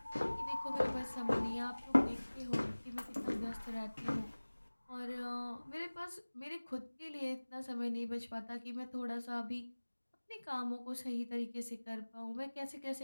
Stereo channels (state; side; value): inverted; both; correlation -1.00